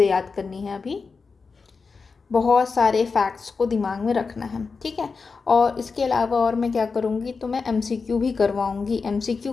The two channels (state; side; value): quieter; right; 4.7 dB